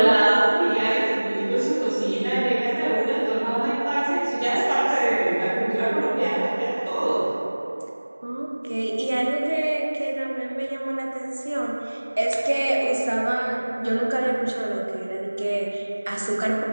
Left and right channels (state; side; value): inverted; both; correlation -1.00